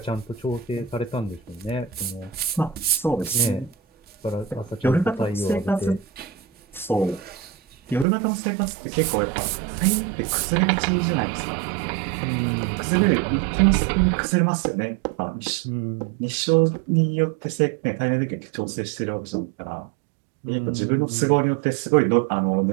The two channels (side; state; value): left; drops out; at 8.1 s